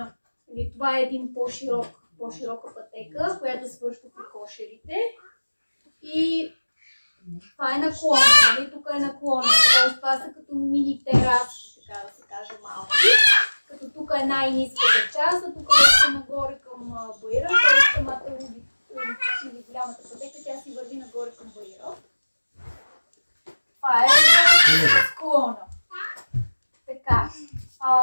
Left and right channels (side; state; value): both; inverted; correlation -1.00